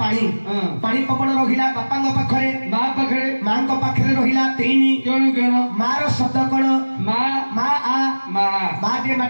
पानी पवन रहिला बापा पाखरे ମା ପାଖରେ माँ पाखरे रहिला 3 କଣ କଣ मार शब्द कण ମା माँ आ ମା माँ जे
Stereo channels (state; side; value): inverted; both; correlation -1.00